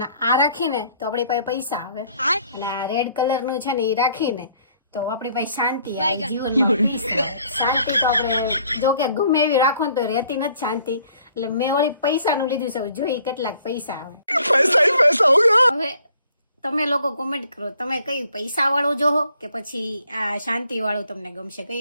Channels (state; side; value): inverted; both; correlation -0.61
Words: આ રાખીને તો આપણી પાસે પૈસા આવે, અને આ રેડ કલરનું છે ને એ રાખીને તો આપણી પાસે શાંતિ આવે જીવનમાં. શાંતિ તો આપણે જો કે ગમે એવી રાખો ને તો રહેતી નથી શાંતિ, એટલે મેં વળી પૈસાનું લીધું છે. જોઈ કેટલાક પૈસા આવે. હવે તમે લોકો કોમેન્ટ કરો, તમે કઈ પૈસા વાળું જોહો કે પછી આ શાંતિ વાળું તમને ગમશે,